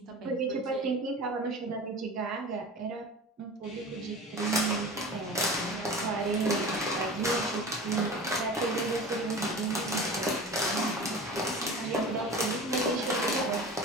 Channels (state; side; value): normal; both; correlation 0.35